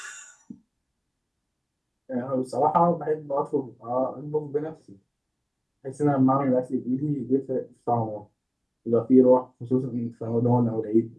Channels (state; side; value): identical; both; correlation 1.00